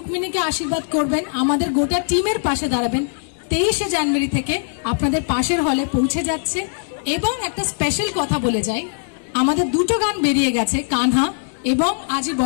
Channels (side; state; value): right; silent; digital silence